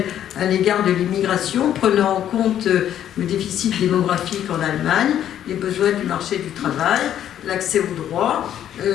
à l'égard de l'immigration, prenant en compte le déficit démographique en Allemagne, les besoins du marché du travail, l'accès aux droits,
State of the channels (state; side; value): quieter; right; 10.7 dB